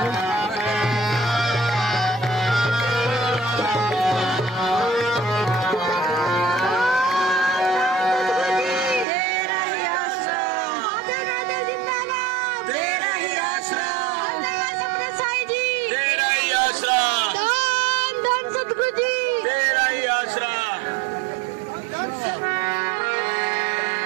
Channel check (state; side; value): drops out; left; at 9.1 s